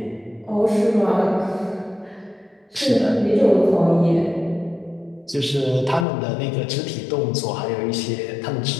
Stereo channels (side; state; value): right; drops out; at 6.1 s